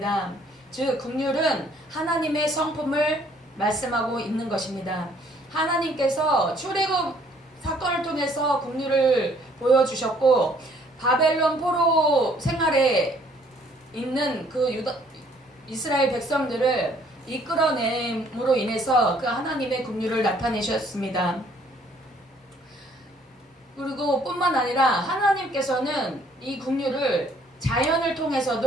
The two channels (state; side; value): normal; both; correlation 0.62